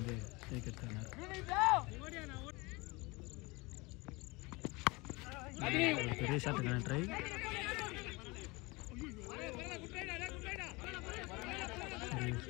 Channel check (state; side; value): quieter; right; 24.7 dB